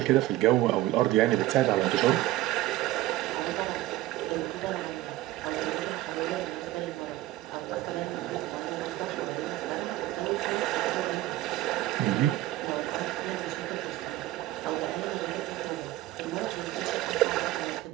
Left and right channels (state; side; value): quieter; left; 16.1 dB